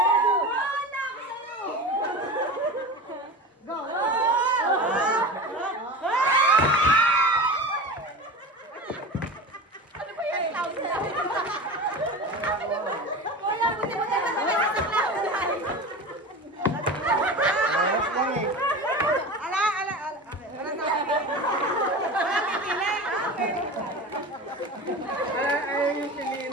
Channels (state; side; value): normal; both; correlation 0.30